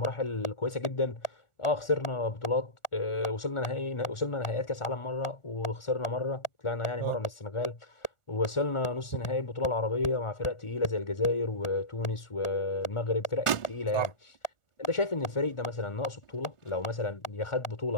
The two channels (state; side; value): late; right; 1.4 ms